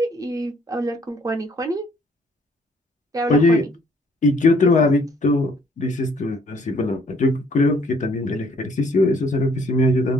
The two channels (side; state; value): both; normal; correlation 0.63